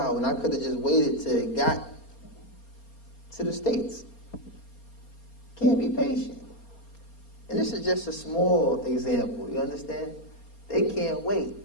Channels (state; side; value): late; right; 4.3 ms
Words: when I could have just waited till it got to the States. Can't be patient. And this is just a small example, you understand? They can't wait.